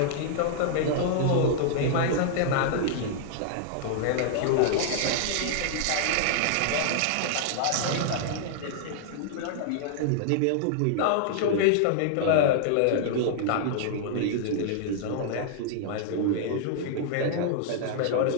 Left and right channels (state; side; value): different; both; correlation -0.01